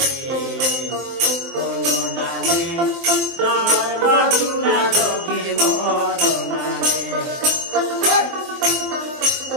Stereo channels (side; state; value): left; late; 23 ms